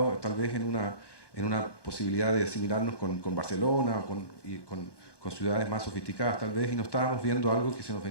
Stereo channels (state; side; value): late; right; 1.2 ms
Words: tal vez en una posibilidad de asimilarnos con Barcelona o con ciudades más sofisticadas tal vez, y no estábamos viendo algo que se nos